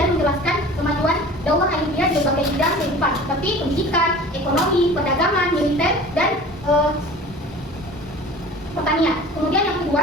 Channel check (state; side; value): normal; both; correlation 0.42